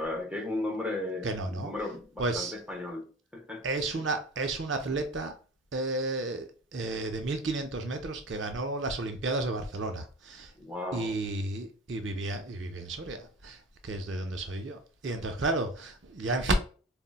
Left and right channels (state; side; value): normal; both; correlation 0.37